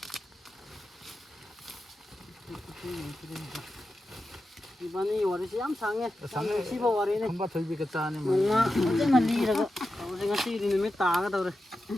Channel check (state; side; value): normal; both; correlation 0.91